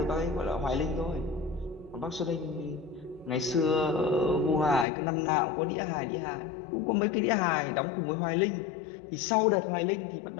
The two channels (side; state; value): right; drops out; at 4.9 s